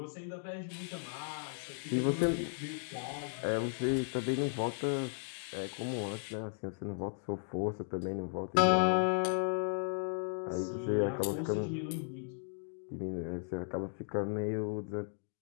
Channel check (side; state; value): right; silent; digital silence